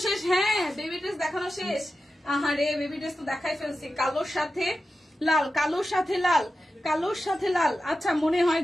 শেষ? হ্যাঁ বেবি ড্রেস দেখানো শেষ। আহারে বেবি ড্রেস তো দেখাই ফেলছি। কালোর সাথে লাল, কালোর সাথে লাল, কালোর সাথে লাল। আচ্ছা মনে হয়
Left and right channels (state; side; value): normal; both; correlation 0.92